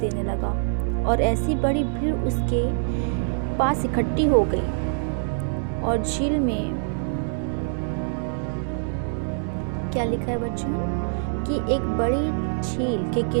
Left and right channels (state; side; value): silent; left; digital silence